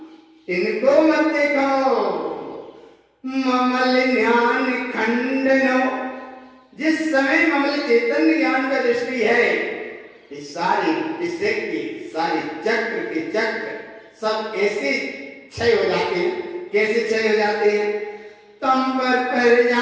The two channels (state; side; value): identical; both; correlation 1.00